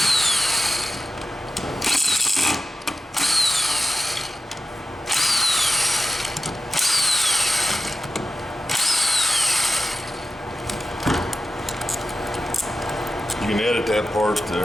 You can edit that part to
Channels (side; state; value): both; normal; correlation 0.93